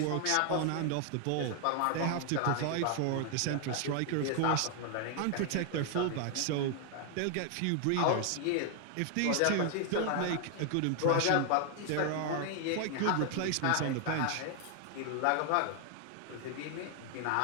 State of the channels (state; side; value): different; both; correlation 0.00